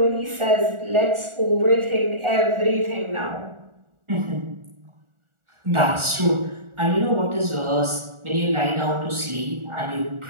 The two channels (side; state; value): left; late; 1.4 ms